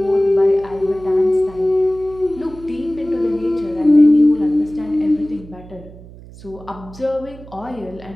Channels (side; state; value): right; noise; hum, 18 dB below the sound